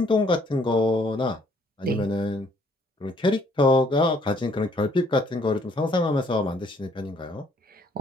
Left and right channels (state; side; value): normal; both; correlation 0.64